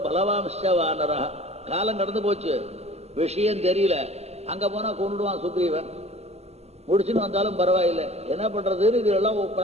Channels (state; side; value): late; left; 0.30 ms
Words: பலவாம்ச வானரா. காலம் கடந்து போச்சு, விஷயம் தெரியல. அங்க போனா கொண்டுடுவான் சுக்ரீவன். முடிச்சுன்னு வந்தாலும் பரவாயில்லை, என்ன பண்றதுன்னு இதெல்லாம்